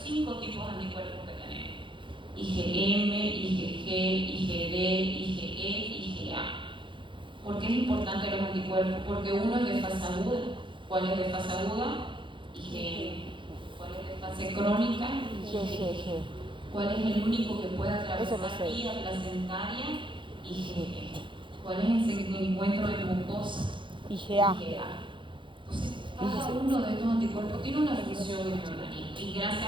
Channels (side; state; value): left; late; 0.24 ms